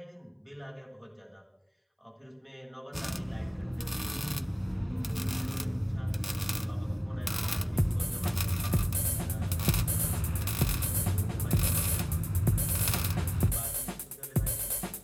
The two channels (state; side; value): identical; both; correlation 1.00